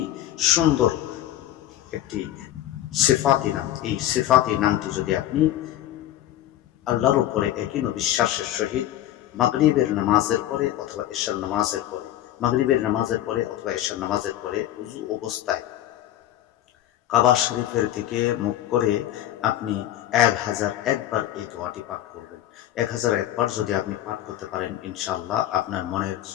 সুন্দর একটি সিফাতি নাম, এই সিফাতি নামটি যদি আপনি আল্লাহর উপরে একই বিশ্বাসের সহিত মাগরিবের নামাজের পরে অথবা এশার নামাজের পরে, মাগরিবের নামাজের পরে অথবা এশার নামাজের পরে উযু অবস্থায় কাবা শরীফের দিকে মুখ করে আপনি 1001 বার এই দোয়াটি পাঠ করবেন। 1001 বার যদি আপনি পাঠ করতে পারেন, ইনশাআল্লাহ আপনার মনের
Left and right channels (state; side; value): quieter; right; 12.8 dB